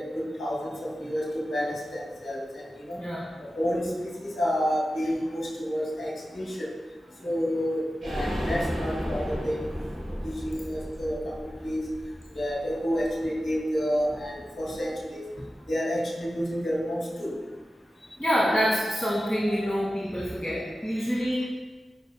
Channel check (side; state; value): both; normal; correlation 0.93